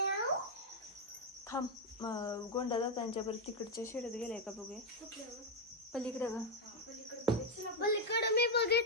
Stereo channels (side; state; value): both; normal; correlation 0.03